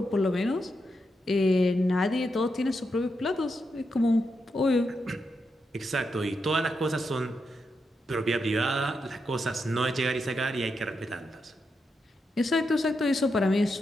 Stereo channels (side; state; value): both; normal; correlation 0.84